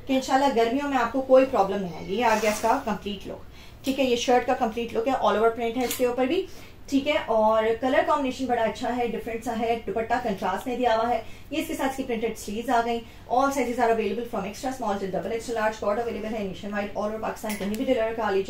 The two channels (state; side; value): identical; both; correlation 1.00